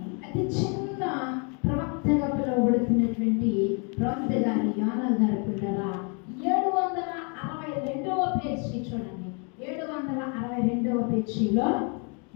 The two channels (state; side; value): quieter; right; 36.3 dB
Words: అది చిన్న ప్రవక్తగా పిలువబడుతున్నటువంటి ప్రవక్త గారి యోనా గారు పిల్లరా 762వ పేజీ చూడండి. 762వ పేజీలో